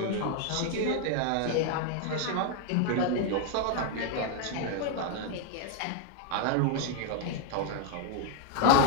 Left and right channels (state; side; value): different; both; correlation 0.00